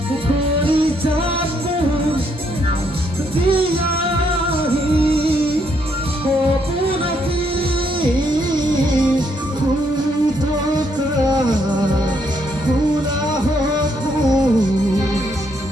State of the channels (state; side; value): normal; both; correlation 0.73